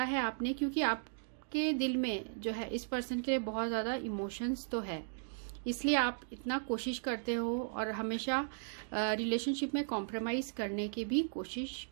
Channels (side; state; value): left; silent; digital silence